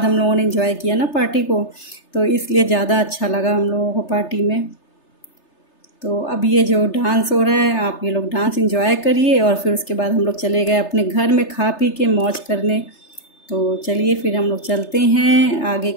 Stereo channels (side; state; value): right; late; 3.3 ms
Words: हम लोगों ने इंजॉय किया ना पार्टी को, तो इसलिए ज़्यादा अच्छा लगा हम लोगों को पार्टी में। तो अब ये जो डांस हो रहा है, आप ये लोग डांस एंजॉय करिए और फिर उसके बाद हम लोग चले गए अपने घर में खा पी के मौज करने। तो चलिए फिर हम लोग चलते हैं, आगे